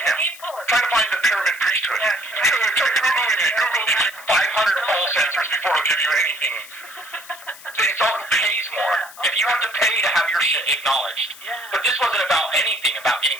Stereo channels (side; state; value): left; noise; hiss, 18 dB below the sound